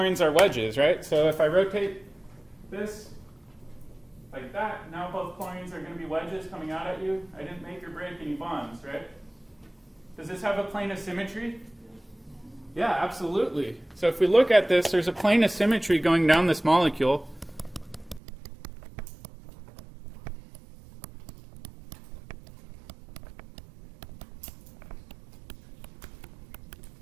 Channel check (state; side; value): drops out; left; at 18.2 s